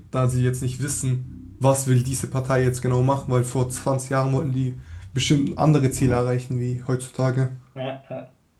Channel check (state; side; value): identical; both; correlation 1.00